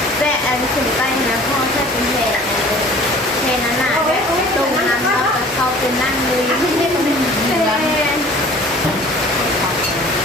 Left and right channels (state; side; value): normal; both; correlation 0.48